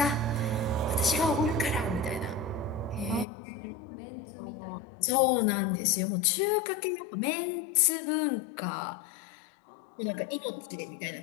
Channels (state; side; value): drops out; right; at 3.2 s